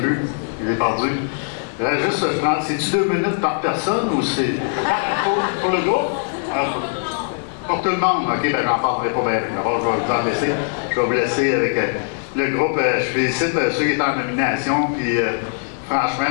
je les ai perdus. Juste, c'est-tu 2 minutes par personne ou c'est pour le groupe? Pour tout le monde. OK, ben j'en parlerai pas bien. D'abord, je vais vous en laisser. Je vais vous laisser avec le groupe. Je félicite ceux qui étaient en nomination. Puis,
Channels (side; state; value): right; silent; digital silence